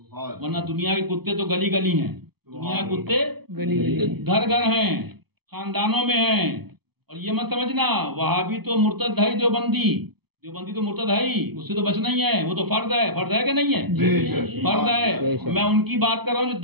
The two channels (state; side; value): late; left; 0.97 ms